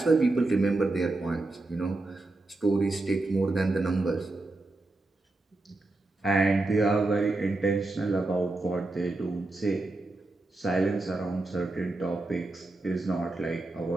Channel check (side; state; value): left; quieter; 3.0 dB